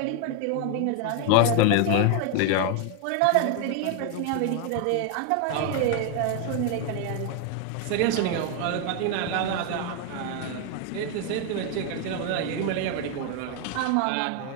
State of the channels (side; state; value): both; different; correlation 0.01